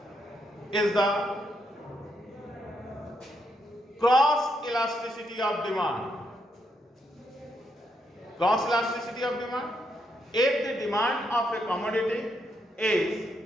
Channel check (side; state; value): both; normal; correlation 0.79